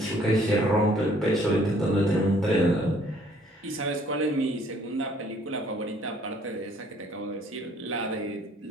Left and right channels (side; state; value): both; normal; correlation 0.61